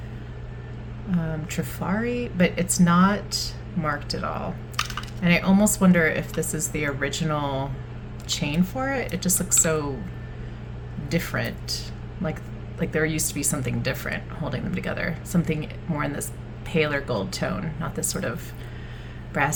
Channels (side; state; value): both; identical; correlation 1.00